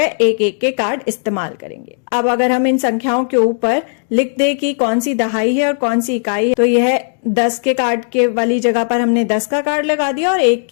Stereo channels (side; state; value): right; silent; digital silence